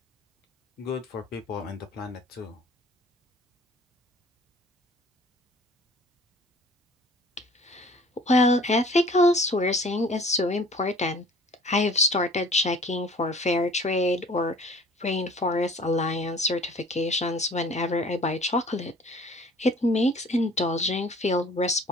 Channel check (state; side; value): normal; both; correlation 0.49